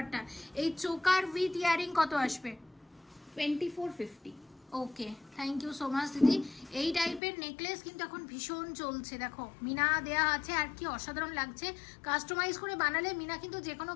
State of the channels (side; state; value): right; drops out; at 7.2 s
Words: এই চোকার উইথ ইয়ারিং কত আসবে? 2450। ওকে, থ্যাংক ইউ সো মাচ দিদি। এই টাইপের নেকলেস কিন্তু এখন ভীষণ চলছে। দেখো মিনা দেয়া আছে, আর কি অসাধারণ লাগছে। কাস্টমাইজ করে বানালে মিনা কিন্তু যে কোনো